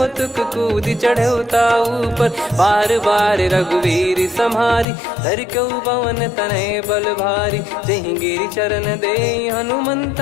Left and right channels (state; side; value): drops out; right; at 4.9 s